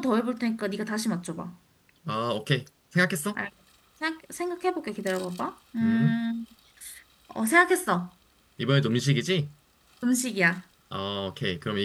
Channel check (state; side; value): identical; both; correlation 1.00